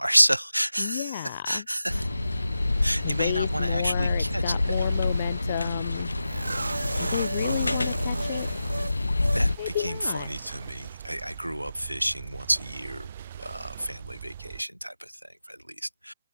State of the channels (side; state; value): both; inverted; correlation -0.92